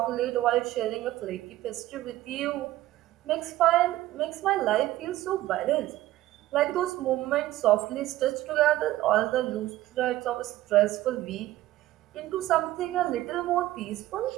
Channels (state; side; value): quieter; left; 15.4 dB